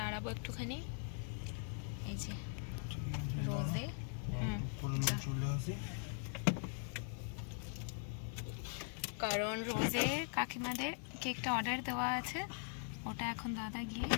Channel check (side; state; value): right; silent; 50 dB below the other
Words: একটুখানি, এই যে রোজে। কারণ রোজে কাকিমাদের কেকটা অর্ডার দেওয়া আছে, ওটা এখন দাদা গিয়ে